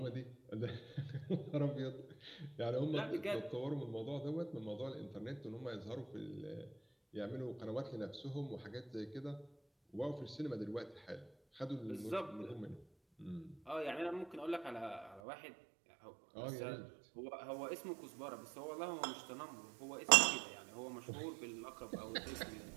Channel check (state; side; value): drops out; left; at 15.2 s